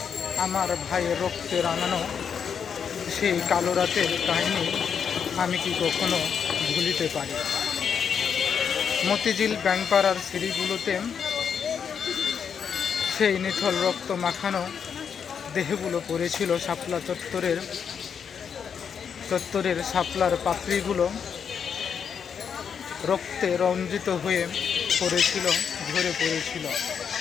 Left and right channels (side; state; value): right; quieter; 7.1 dB